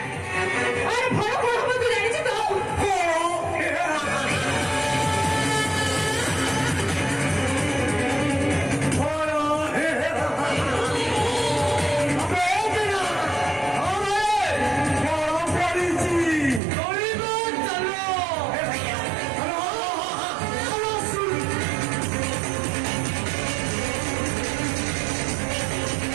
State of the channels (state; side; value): drops out; left; at 16.6 s